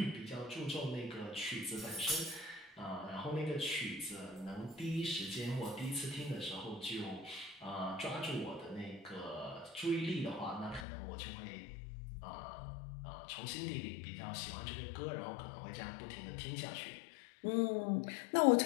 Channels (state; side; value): drops out; right; at 10.9 s